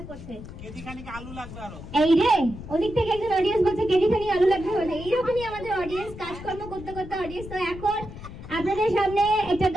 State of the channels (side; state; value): left; noise; rumble, 13 dB below the sound